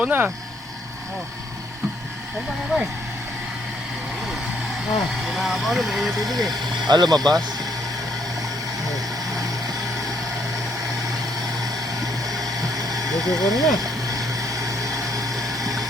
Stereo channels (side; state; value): both; normal; correlation 0.69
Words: na. Saan ba nga ba eh? Umapaw na, may tubig eh. Lumabas. Gusto ko na.